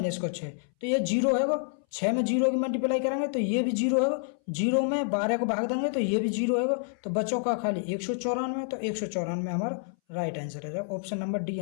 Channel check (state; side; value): silent; right; 59 dB below the other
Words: को 6, तो ये 0 है वो, 6 में 0 की मल्टीप्लाई करेंगे तो ये भी 0 है वो, 0 में 12 को भाग देंगे तो ये भी 0 है वो, तो बच्चों का खाली 194, तो 194 हमारा राइट आंसर है। ऑप्शन नंबर डी